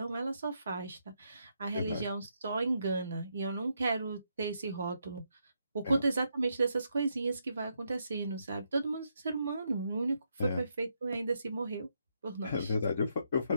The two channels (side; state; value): both; inverted; correlation -0.79